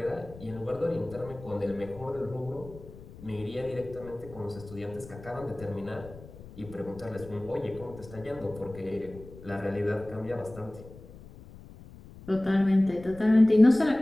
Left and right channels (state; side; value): noise; left; rumble, 17 dB below the sound